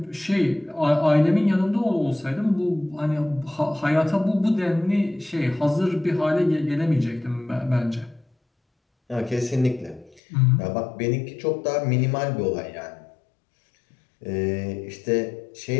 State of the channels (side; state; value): right; drops out; at 10.2 s